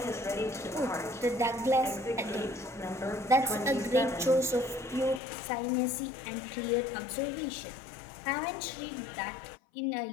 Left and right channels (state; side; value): drops out; right; at 5.2 s